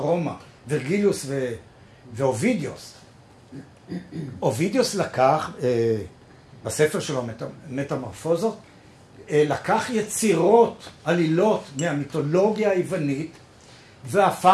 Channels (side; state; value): both; identical; correlation 1.00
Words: ורגליוס ואובידיוס. אובידיוס לקח, בספר שלו, מטמורפוזות, לקח יצירות, עלילות מהמיתולוגיה היוונית,